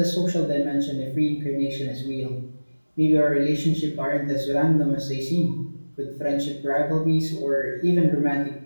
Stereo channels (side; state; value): both; inverted; correlation -1.00